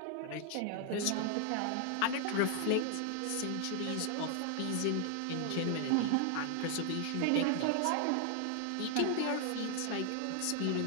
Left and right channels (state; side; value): different; both; correlation 0.00